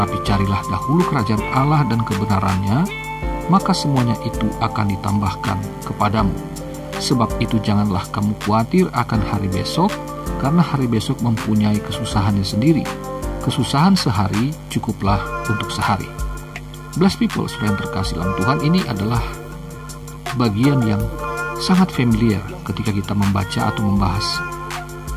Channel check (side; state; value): both; identical; correlation 1.00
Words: carilah dahulu kerajaan Allah dan kebenarannya, maka semuanya itu akan ditambahkan kepadamu. Sebab itu janganlah kamu khawatir akan hari besok, karena hari besok mempunyai kesusahannya sendiri. Kesusahan sehari cukuplah untuk sehari. Blessed people, saudara yang terkasih dalam Tuhan, ini adalah bagian yang sangat familiar ketika kita membaca atau membahas